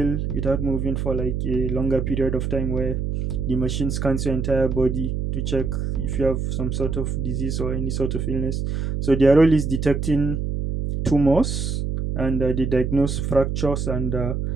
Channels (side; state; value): right; noise; hum, 1 dB below the sound